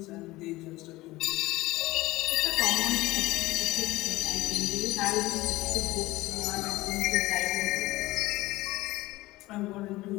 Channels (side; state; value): right; quieter; 19.1 dB